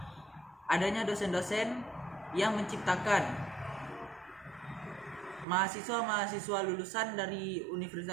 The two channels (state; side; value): drops out; left; at 5.5 s